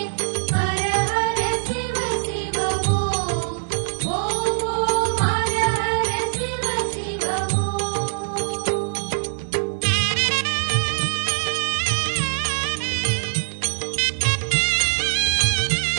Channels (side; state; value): left; silent; digital silence